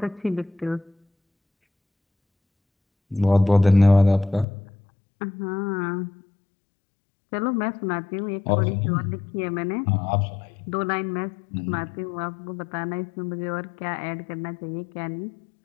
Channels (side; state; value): right; drops out; at 4.5 s